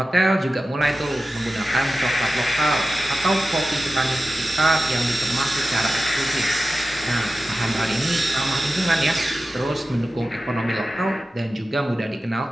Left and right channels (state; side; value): normal; both; correlation 0.94